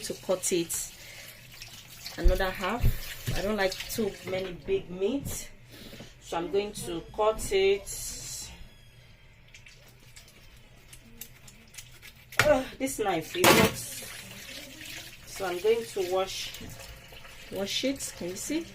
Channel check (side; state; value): both; identical; correlation 1.00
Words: to cut it another half. I don't like too many big meat, so I'm going to cut it. This knife is not, so I'm going to wash it. Can you see?